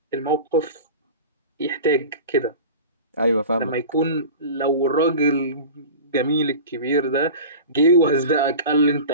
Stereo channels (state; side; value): inverted; both; correlation -0.34